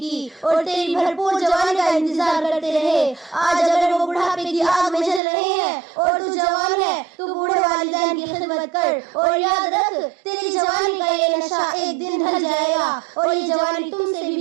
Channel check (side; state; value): left; drops out; at 5.2 s